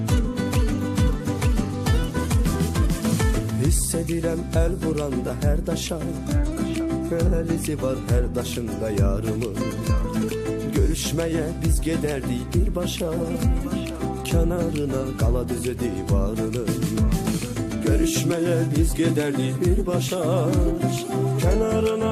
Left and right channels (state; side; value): identical; both; correlation 1.00